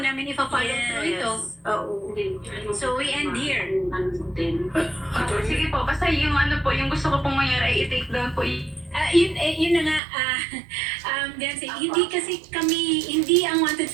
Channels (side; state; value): left; drops out; at 10.0 s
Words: ipa-follow through ito. Oo. So we end here. Sige po, basta yung yung gusto ko pong mangyari ay i-take down po. Yun na nga, Beyonce, hindi ang Wanted